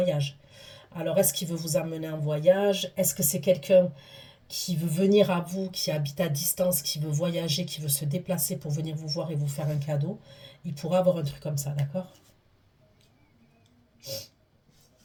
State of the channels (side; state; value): both; identical; correlation 1.00